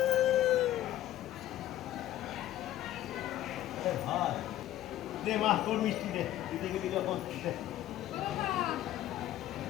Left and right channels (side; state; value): right; quieter; 13.2 dB